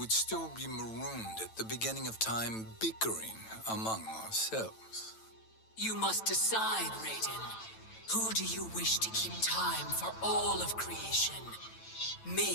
still be marooned at the beginning of time, bickering among ourselves. You must decide, Raiden. Who do you wish to keep time for all of creation?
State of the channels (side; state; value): right; late; 9.0 ms